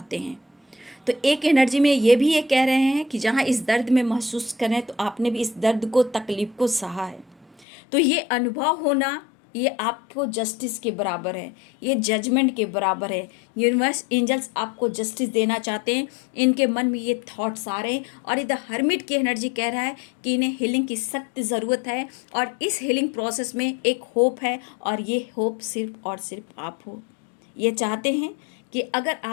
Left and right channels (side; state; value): right; drops out; at 7.7 s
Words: हैं। तो एक एनर्जी में ये भी ये कह रहे हैं कि जहाँ इस दर्द में महसूस करें, तो आपने भी इस दर्द को, तकलीफ को सहा है, तो ये अनुभव होना ये आपको जस्टिस के बराबर है, ये जजमेंट के बराबर है। यूनिवर्स एंजल्स आपको जस्टिस देना चाहते हैं, इनके मन में ये थॉट्स आ रहे हैं और इधर हर्मिट की एनर्जी कह रहा है कि इन्हें हीलिंग की सख्त ज़रूरत है और इस हीलिंग प्रोसेस में एक होप है और ये होप सिर्फ और सिर्फ आप हो। ये चाहते हैं कि अगर